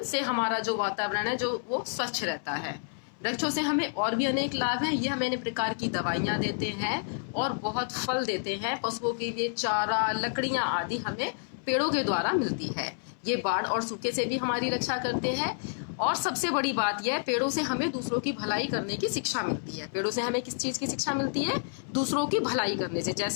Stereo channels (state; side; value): silent; right; 58 dB below the other